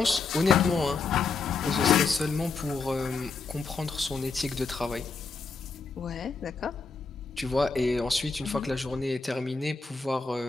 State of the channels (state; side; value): quieter; right; 4.5 dB